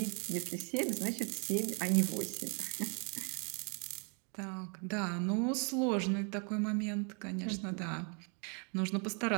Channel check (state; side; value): quieter; left; 36.8 dB